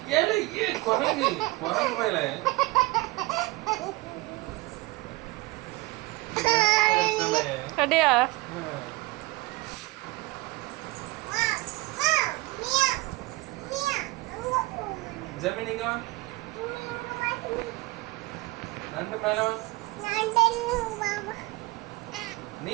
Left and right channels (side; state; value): left; quieter; 21.7 dB